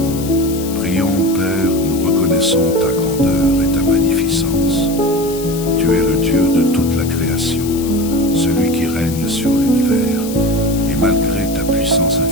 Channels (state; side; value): noise; left; hiss, 13 dB below the sound